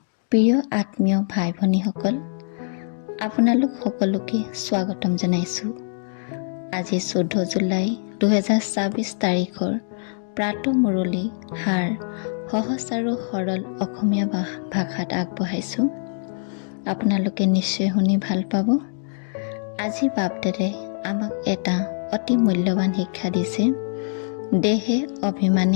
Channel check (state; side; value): silent; right; digital silence